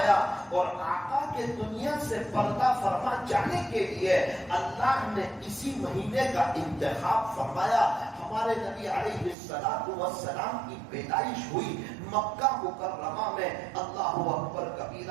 اور آقا کے دنیا سے پردہ فرما جانے کے لیے اللہ نے اسی مہینے کا انتخاب فرمایا. ہمارے نبی علیہ السلام کی پیدائش ہوئی مکہ مکرمہ میں. اللہ اکبر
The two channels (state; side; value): drops out; left; at 9.3 s